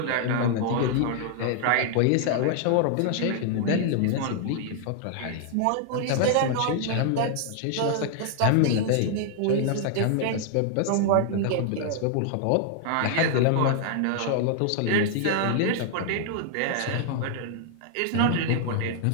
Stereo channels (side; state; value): both; different; correlation -0.01